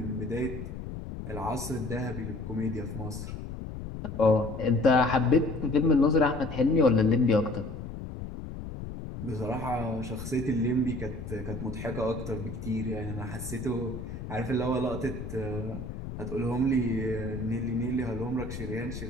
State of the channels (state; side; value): noise; left; rumble, 8 dB below the sound